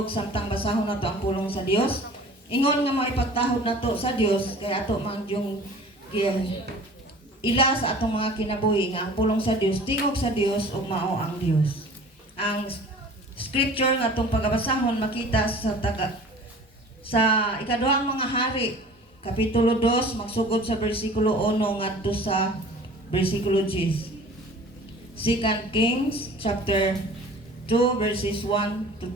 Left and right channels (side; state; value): both; normal; correlation 0.45